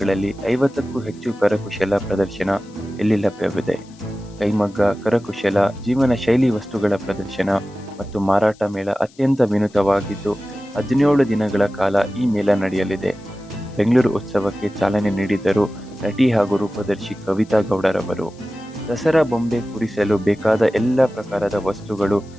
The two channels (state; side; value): noise; left; hiss, 28 dB below the sound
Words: 50ಕ್ಕೂ ಹೆಚ್ಚು ಕರಕುಶಲ ಪ್ರದರ್ಶನ ಇಲ್ಲಿ ಲಭ್ಯವಿದೆ. ಕೈಮಗ್ಗ, ಕರಕುಶಲ, ಜೀವನ ಶೈಲಿ ವಸ್ತುಗಳ ಪ್ರದರ್ಶನ ಮತ್ತು ಮಾರಾಟ ಮೇಳ ಅತ್ಯಂತ ವಿನೂತವಾಗಿದ್ದು 17 ದಿನಗಳ ಕಾಲ ಈ ಮೇಳ ನಡೆಯಲಿದೆ. ಬೆಂಗಳೂರು ಉತ್ಸವಕ್ಕೆ ಚಾಲನೆ ನೀಡಿದರು ನಟಿ ಹಾಗೂ ರೂಪದರ್ಶಿ ಕವಿತಾ ಗೌಡರವರು. ದಸರಾ ಬೊಂಬೆ ಕೂರಿಸಲು ಬೇಕಾದ ಎಲ್ಲ ಪ್ರಕಾರದ ವಸ್ತುಗಳು